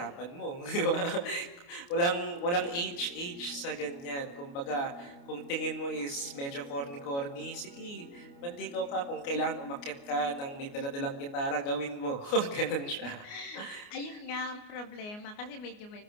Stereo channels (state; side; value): late; right; 29 ms